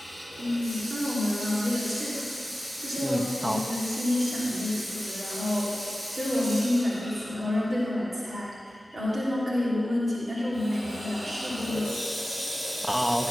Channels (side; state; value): both; normal; correlation 0.95